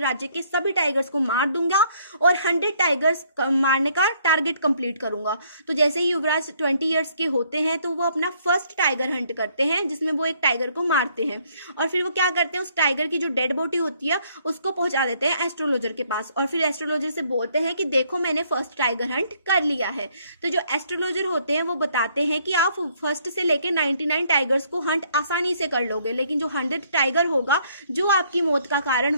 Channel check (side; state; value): both; inverted; correlation -0.66